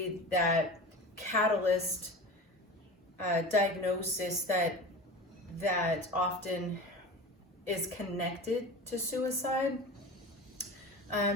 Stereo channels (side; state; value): both; normal; correlation 0.33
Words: that catalyst diagnosis that often is connected to suicide.